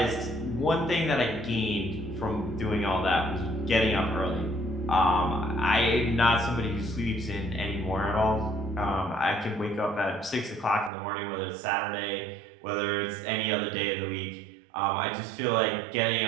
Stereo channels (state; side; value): drops out; left; at 10.9 s